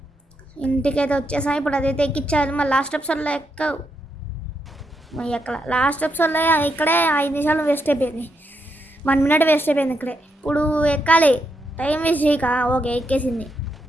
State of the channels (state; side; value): normal; both; correlation 0.81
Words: ఇంటికైతే వచ్చేసాం. ఇప్పుడు అదైతే ఎక్కించాలి. మళ్ళీ లాస్ట్ ఎపిసోడ్లో లాస్ట్ ఎపిసోడ్లో ఇక్కడే 5 నిమిషాలు వేస్ట్ అయిపోయింది, 1 మినిట్ వేస్ట్ అయిపోయింది ఇక్కడే. ఇప్పుడు ఎక్కాలి, టైం వేస్ట్ చేయక. ఓకే ఎక్కేసింది.